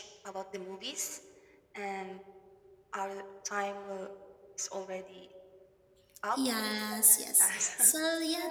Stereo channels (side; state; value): both; identical; correlation 1.00